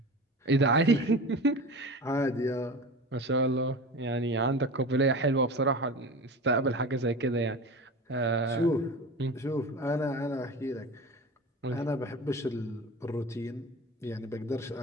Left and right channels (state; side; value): normal; both; correlation 0.32